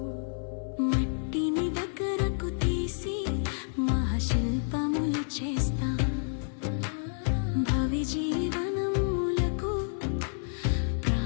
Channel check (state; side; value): silent; right; 58 dB below the other